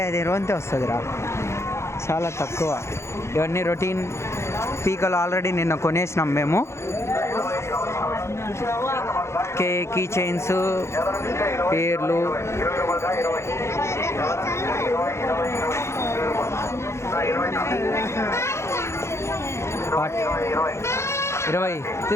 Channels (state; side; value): late; right; 0.13 ms